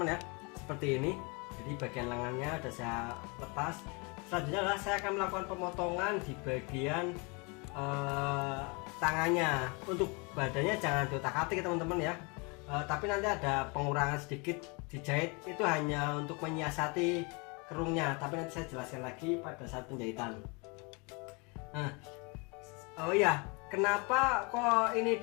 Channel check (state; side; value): quieter; right; 30.7 dB